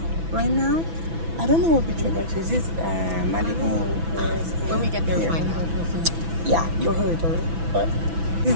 right now, I don't know what beach we're going to. Is this Malibu? When we get there, we'll find out. Yeah, you heard already. But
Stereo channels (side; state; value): left; late; 6.0 ms